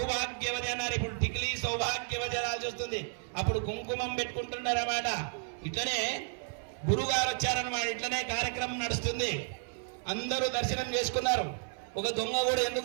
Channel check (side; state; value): left; silent; 56 dB below the other